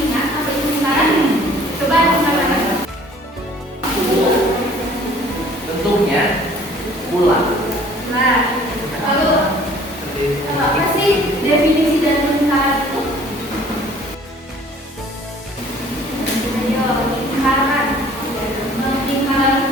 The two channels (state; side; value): normal; both; correlation 0.53